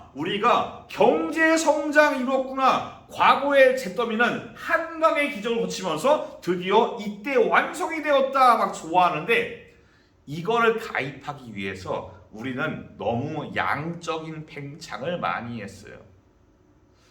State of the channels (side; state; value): both; identical; correlation 1.00